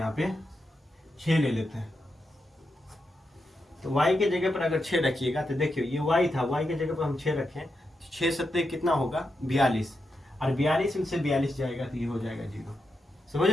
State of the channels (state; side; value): normal; both; correlation 0.86